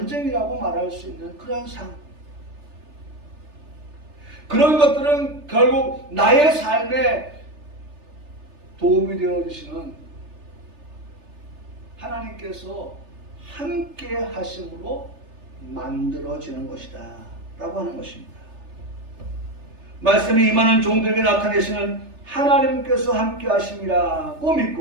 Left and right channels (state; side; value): late; left; 3.3 ms